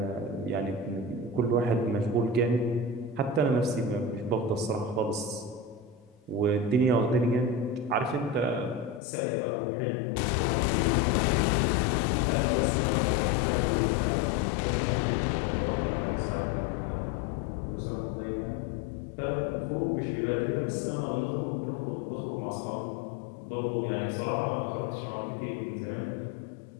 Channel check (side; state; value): right; drops out; at 9.0 s